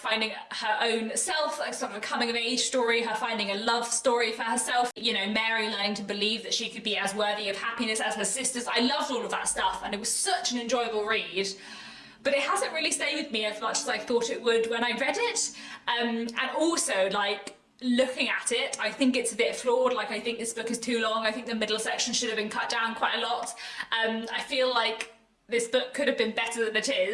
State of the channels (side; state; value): both; identical; correlation 1.00